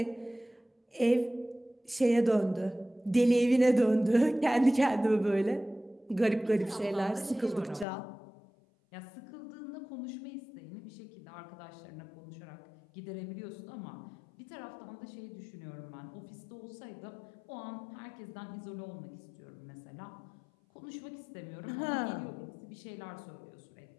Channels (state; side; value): drops out; right; at 7.9 s